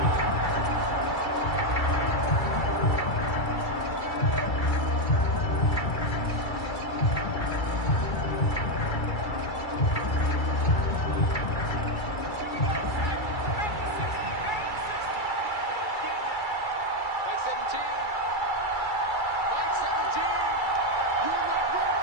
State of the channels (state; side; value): late; right; 2.3 ms